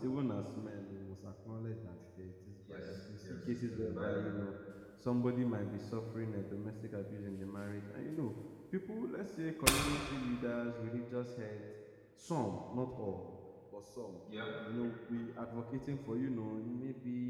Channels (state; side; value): identical; both; correlation 1.00